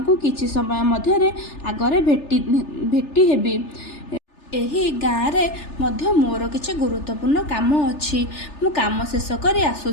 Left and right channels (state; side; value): late; right; 3.4 ms